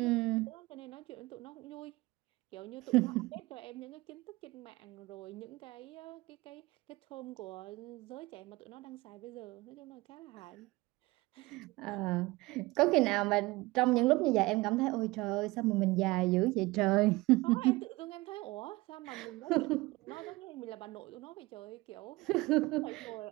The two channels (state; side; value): quieter; left; 21.4 dB